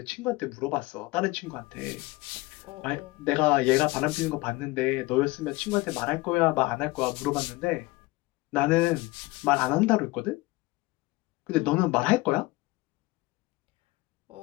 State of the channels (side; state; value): right; quieter; 21.4 dB